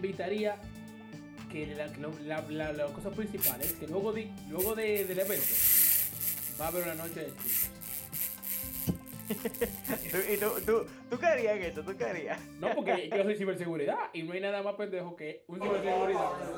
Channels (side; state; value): both; identical; correlation 1.00